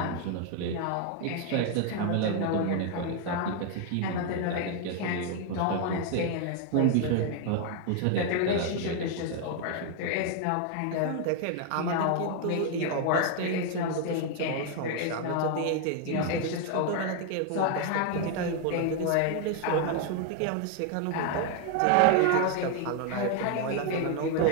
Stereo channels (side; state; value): both; different; correlation 0.00